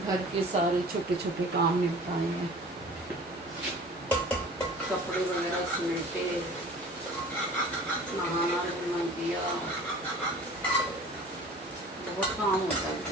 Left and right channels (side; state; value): both; normal; correlation 0.44